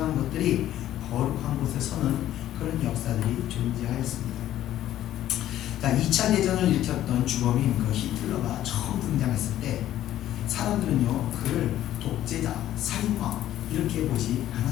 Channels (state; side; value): quieter; right; 12.8 dB